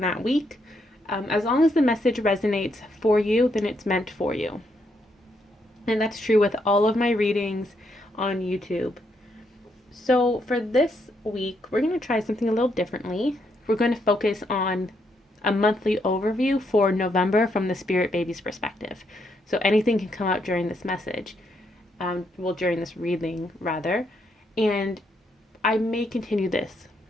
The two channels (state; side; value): normal; both; correlation 0.77